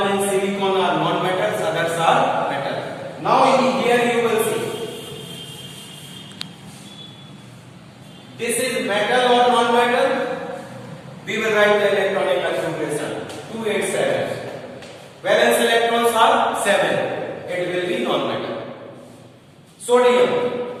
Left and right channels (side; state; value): both; identical; correlation 1.00